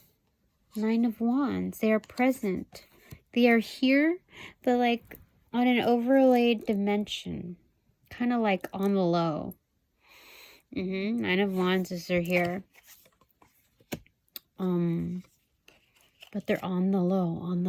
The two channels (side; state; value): both; identical; correlation 1.00